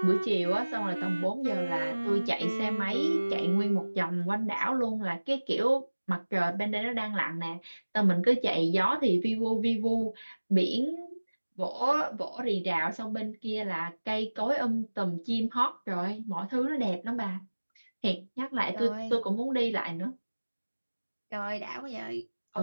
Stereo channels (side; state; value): both; inverted; correlation -1.00